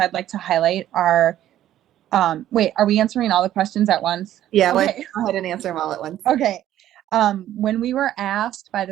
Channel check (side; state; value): left; quieter; 12.4 dB